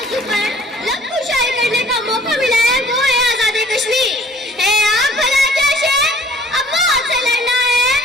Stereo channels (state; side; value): normal; both; correlation 0.54